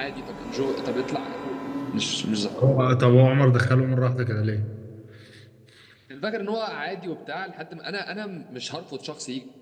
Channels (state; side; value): identical; both; correlation 1.00